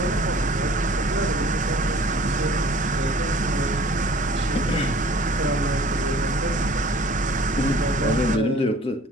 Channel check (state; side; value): normal; both; correlation 0.50